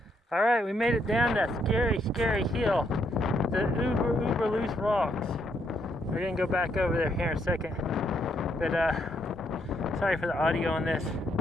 Alright, we made it down that scary, scary hill. The uber loose rocks. We're gonna go back over there here in a second. But sorry for the audio on this.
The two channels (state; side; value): normal; both; correlation 0.74